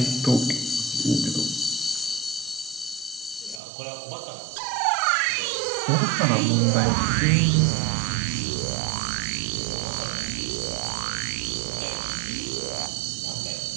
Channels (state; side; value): drops out; left; at 3.6 s